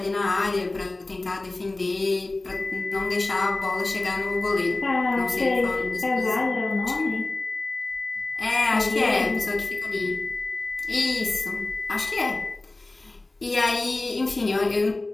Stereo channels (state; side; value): quieter; right; 3.0 dB